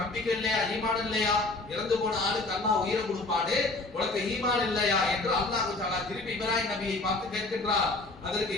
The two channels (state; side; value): quieter; right; 3.1 dB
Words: நம்பிக்கை இல்லையா, ஈமான் இல்லையா, இறந்து போன ஆளுக்கு அல்லாஹ் உயிரை கொடுப்பாடு, உனக்கு ஈமான் இல்லையா என்று அல்லாஹ் தஆலா திருப்பி இப்ராஹிம் நபியை பார்த்து கேட்கின்றார். அதற்கு